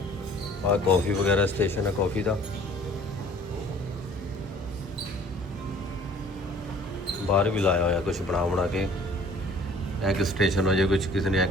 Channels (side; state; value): both; normal; correlation 0.51